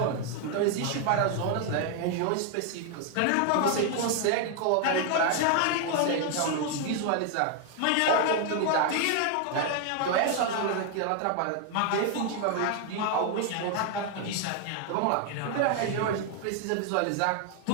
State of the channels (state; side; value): different; both; correlation 0.00